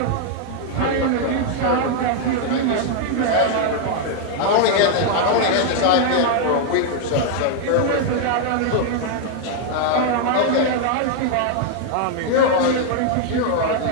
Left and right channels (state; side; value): different; both; correlation 0.00